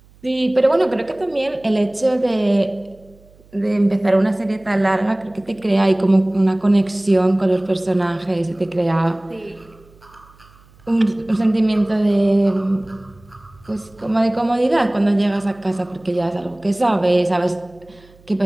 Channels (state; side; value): noise; right; hum, 28 dB below the sound